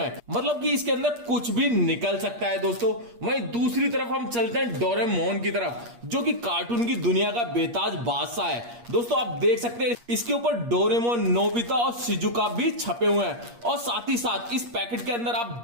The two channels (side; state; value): left; late; 8.5 ms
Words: मतलब कि इसके अंदर कुछ भी निकल सकता है दोस्तों। वहीं दूसरी तरफ हम चलते हैं डोरेमोन की तरफ, जो कि कार्टून की दुनिया का बेताज बादशाह है। दोस्तों, आप देख सकते हैं इसके ऊपर डोरेमोन, नोबिता और शिजुका भी छपे हुए हैं। और साथ ही साथ इस पैकेट के अंदर आप